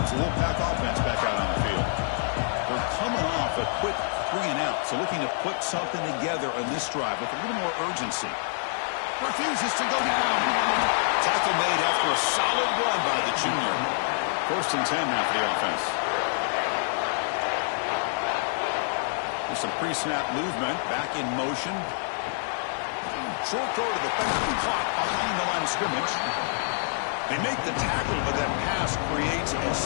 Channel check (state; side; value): silent; right; digital silence